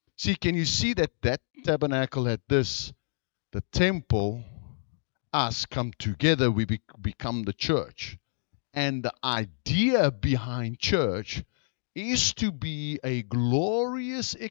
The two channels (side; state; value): right; silent; digital silence